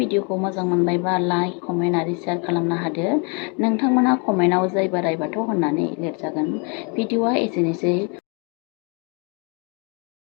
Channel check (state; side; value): quieter; right; 34.9 dB